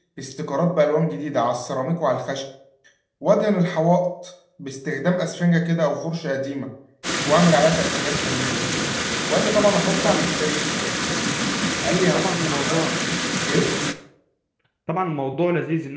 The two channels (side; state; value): both; identical; correlation 1.00